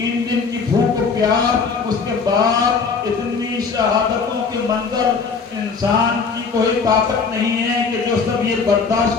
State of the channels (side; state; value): right; quieter; 5.1 dB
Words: دن کی بھوک و پیاس, اس کے بعد اتنی شہادتوں کے منظر, انسان کی کوئی طاقت نہیں ہے کہ جو سب یہ برداشت